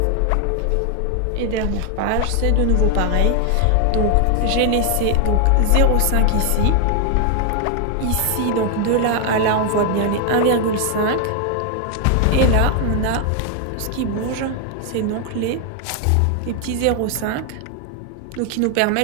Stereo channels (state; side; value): different; both; correlation 0.00